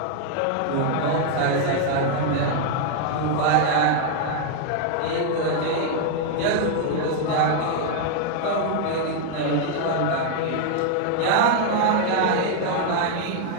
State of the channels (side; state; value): both; different; correlation 0.00